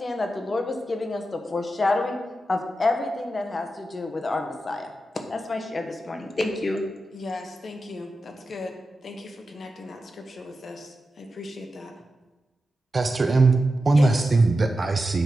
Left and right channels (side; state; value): both; normal; correlation 0.90